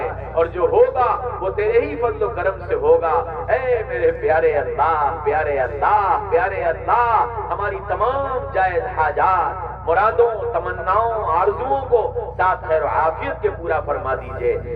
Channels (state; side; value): identical; both; correlation 1.00